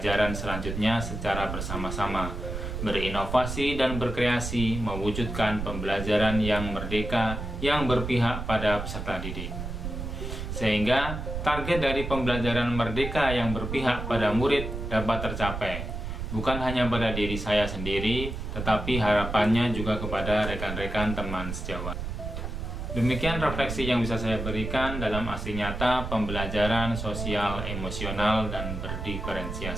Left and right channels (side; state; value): right; noise; rumble, 5 dB below the sound